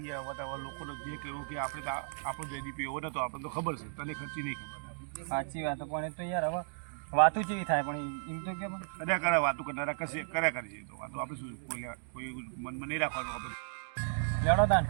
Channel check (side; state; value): left; silent; digital silence